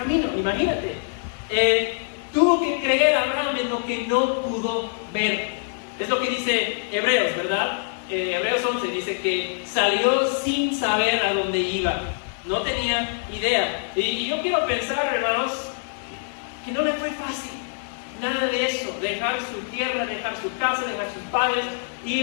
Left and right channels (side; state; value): right; silent; digital silence